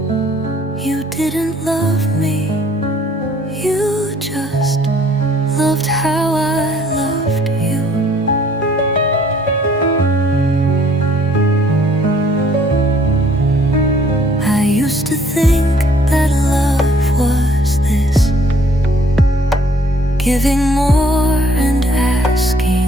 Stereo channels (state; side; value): normal; both; correlation 0.60